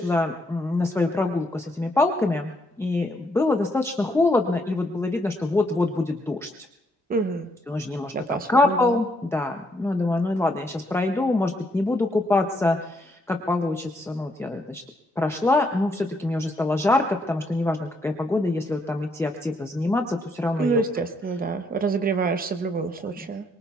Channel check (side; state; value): both; normal; correlation 0.73